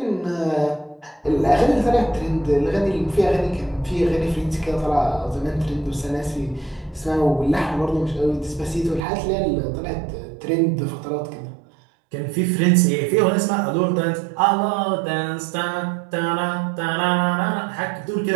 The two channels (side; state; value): left; drops out; at 9.1 s